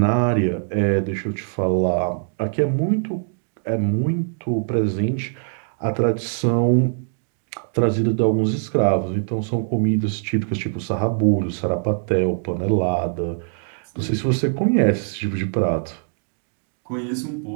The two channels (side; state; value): left; silent; digital silence